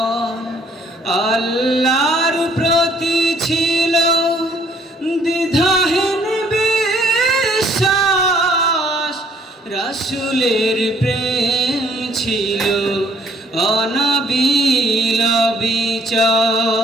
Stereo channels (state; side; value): normal; both; correlation 0.61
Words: আল্লাহর প্রতি ছিল দ্বিধাহীন বিশ্বাস, রাসূলের প্রেম ছিল অনাবিল